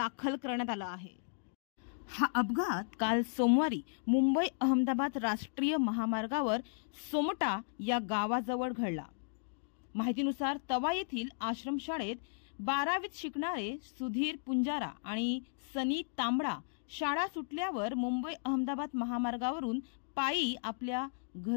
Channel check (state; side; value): silent; right; digital silence